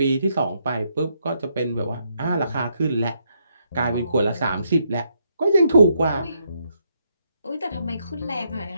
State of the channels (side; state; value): both; inverted; correlation -0.76